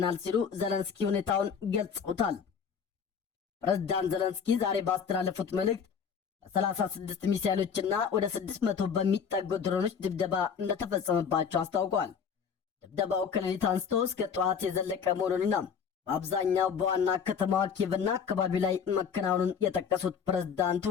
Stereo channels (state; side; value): quieter; right; 6.8 dB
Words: ሲሉ ዘለንስኪ ሁኔታውን ገልጸውታል። ፕሬዝዳንት ዘለንስኪ ዛሬ ባስተላለፉት መልእክት በ36 ሚሳኤሎችና ወደ 600 በሚጠጉ ድሮኖች ድብደባ እንደተፈጸመባቸው አስታውቋል። ድብደባው ከሌሊት አንስቶ እስከ ጠዋት የዘለቀ መሆኑንና በአብዛኛው በዋና ከተማዋ ኪየቭና አካባቢ ላይ መከናወኑን የጠቀሱት ፕሬዝዳንቱ